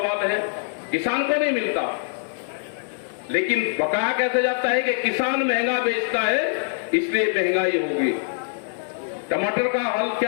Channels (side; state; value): right; silent; digital silence